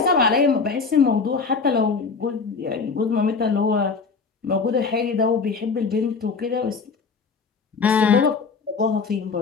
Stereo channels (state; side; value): quieter; right; 4.9 dB